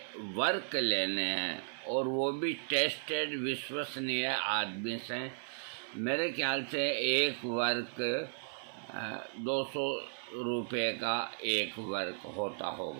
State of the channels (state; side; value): silent; left; 54 dB below the other